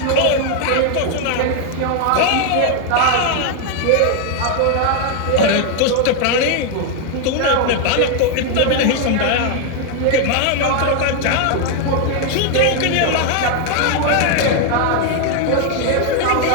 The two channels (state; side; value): different; both; correlation 0.00